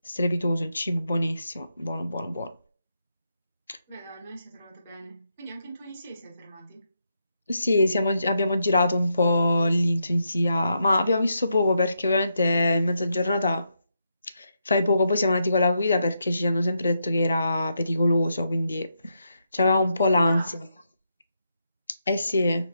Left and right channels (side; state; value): both; inverted; correlation -0.82